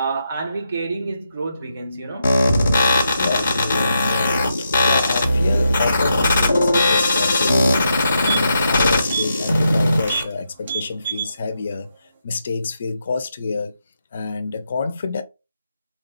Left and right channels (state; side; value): inverted; both; correlation -0.83